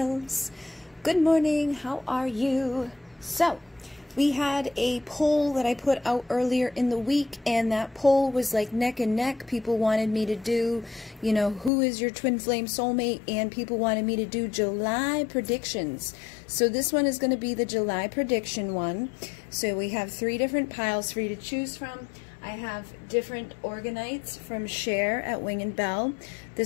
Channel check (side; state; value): right; drops out; at 11.7 s